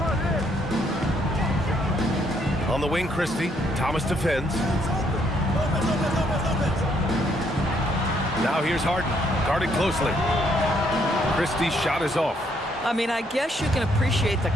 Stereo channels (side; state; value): both; normal; correlation 0.71